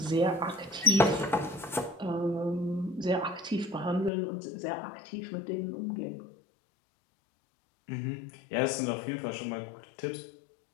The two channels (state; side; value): drops out; right; at 4.1 s